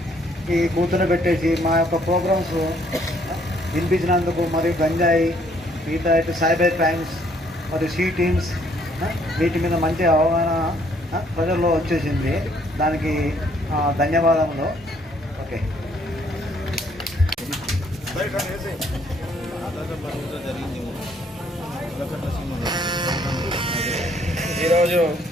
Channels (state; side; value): normal; both; correlation 0.65